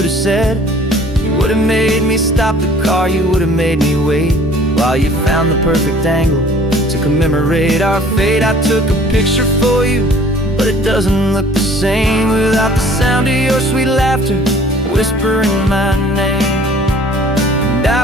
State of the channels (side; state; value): both; normal; correlation 0.52